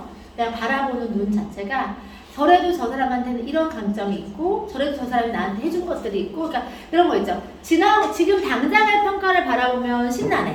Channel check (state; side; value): identical; both; correlation 1.00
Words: 내가 바라보는 눈 자체가 저래도 저 사람한테는 이런 감정이 있고 저래도 저 사람이 나한테 해준 것들이 있고 그러니까 이런 거 있죠. 지금 당장의 평가를 바라보면